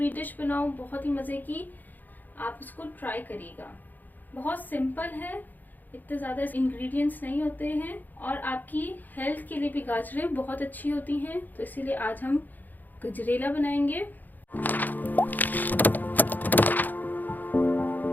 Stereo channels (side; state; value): right; late; 0.085 ms